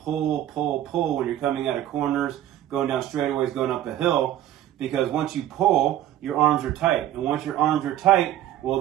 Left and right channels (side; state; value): left; quieter; 12.5 dB